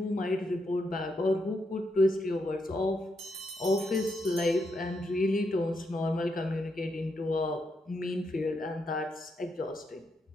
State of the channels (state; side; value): normal; both; correlation 0.81